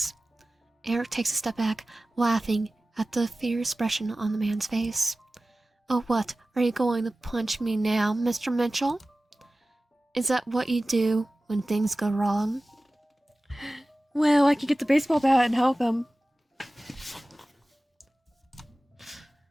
Eric takes a step back, laughing at the fear expression on the man's face. Oh, what? Are you going to punch me now, Mr. Mitchell? Is that what you do when things go wrong? Well, I could get the baseball bat and help him.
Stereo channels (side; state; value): both; normal; correlation 0.96